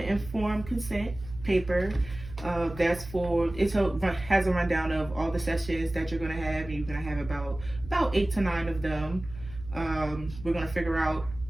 informed consent paper. That's has a rundown of all the sessions that you're gonna have, and you're gonna have about 8 to 9 of them. We're gonna figure out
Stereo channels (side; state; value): right; noise; hum, 14 dB below the sound